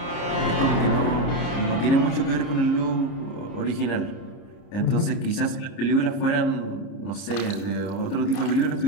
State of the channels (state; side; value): late; right; 30 ms